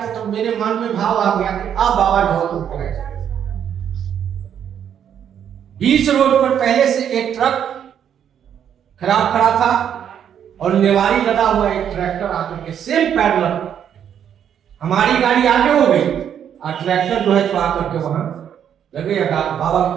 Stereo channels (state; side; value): quieter; left; 9.0 dB